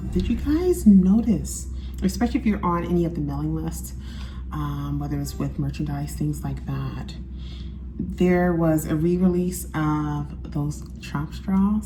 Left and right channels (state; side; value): identical; both; correlation 1.00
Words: did you guys notice, especially if you're on any of the mailing lists, whether it's with merchandise, things like that, there was a re-release of those Trump